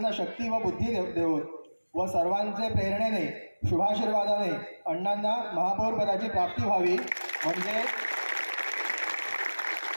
शक्ती व बुद्धी देवोत व सर्वांचे प्रेरणेने, शुभाशीर्वादाने अण्णांना महापौर पदाची प्राप्ती व्हावी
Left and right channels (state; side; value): inverted; both; correlation -1.00